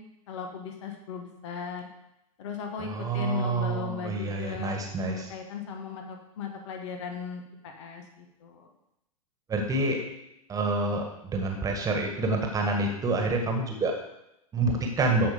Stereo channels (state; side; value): normal; both; correlation 0.12